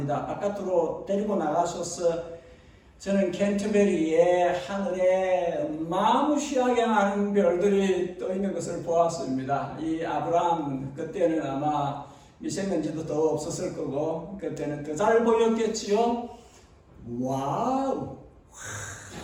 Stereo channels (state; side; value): identical; both; correlation 1.00